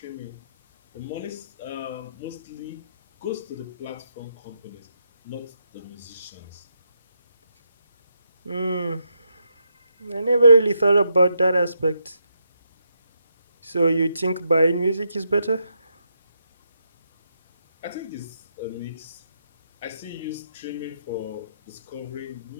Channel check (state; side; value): inverted; both; correlation -0.80